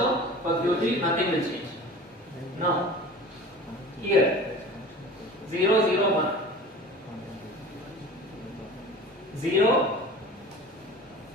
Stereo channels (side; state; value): both; normal; correlation 0.39